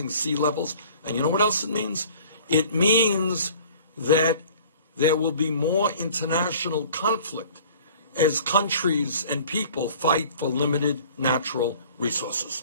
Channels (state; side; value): inverted; both; correlation -0.49